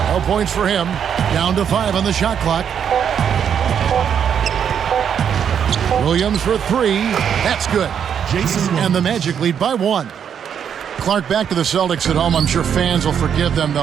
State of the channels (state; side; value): quieter; left; 8.1 dB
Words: No points for him. Down to 5 on the shot clock. Williams for 3. That's good. And the Magic lead by 1. Clark, back to the Celtics at home. I'm sure fans will forgive them,